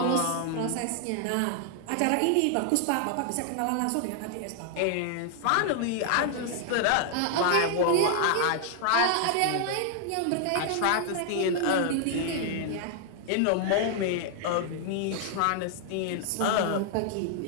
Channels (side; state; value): both; different; correlation 0.00